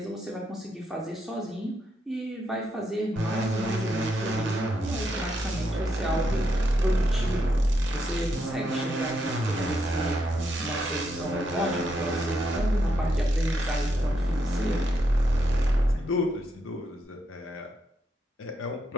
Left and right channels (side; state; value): both; normal; correlation 0.79